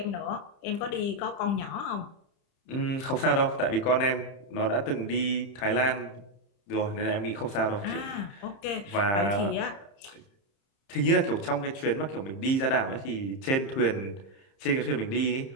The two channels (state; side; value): late; right; 30 ms